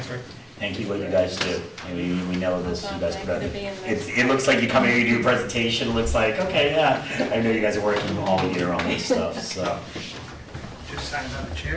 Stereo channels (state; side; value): identical; both; correlation 1.00